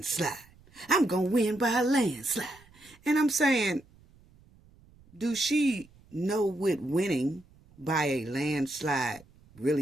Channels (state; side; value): noise; right; rumble, 27 dB below the sound